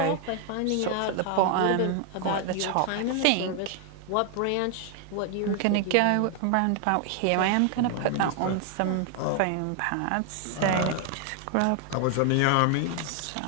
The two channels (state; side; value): different; both; correlation 0.00